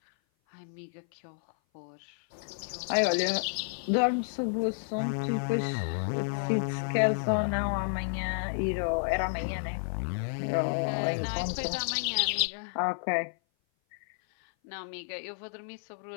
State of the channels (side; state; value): right; silent; 56 dB below the other